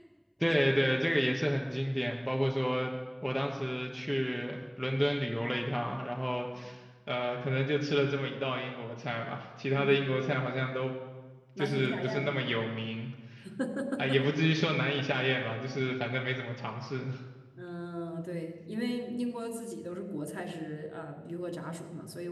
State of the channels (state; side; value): identical; both; correlation 1.00